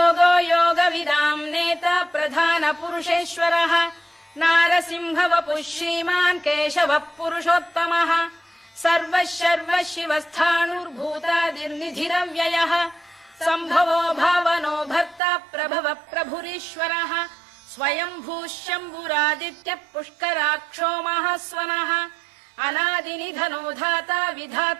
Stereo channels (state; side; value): drops out; left; at 15.2 s